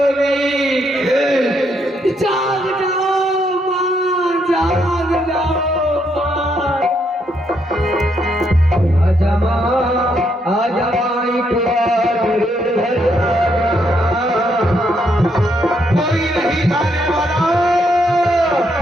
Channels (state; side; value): normal; both; correlation 0.75